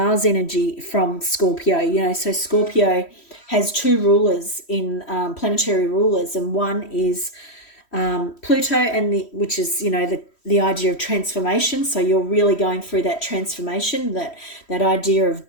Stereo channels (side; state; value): right; late; 3.1 ms